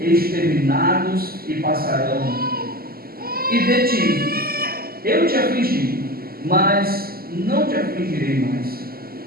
e passarão. E de ti eu te afligi, mas não te afligirei mais.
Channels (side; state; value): left; late; 0.44 ms